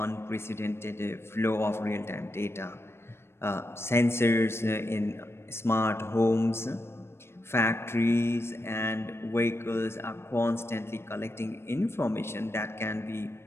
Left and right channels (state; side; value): late; right; 0.12 ms